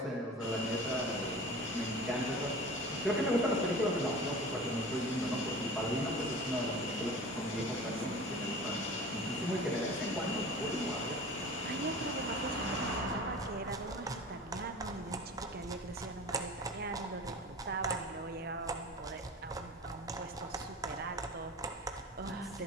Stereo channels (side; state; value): both; normal; correlation 0.38